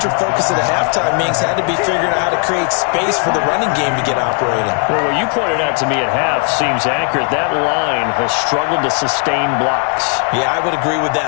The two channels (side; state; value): right; quieter; 38.1 dB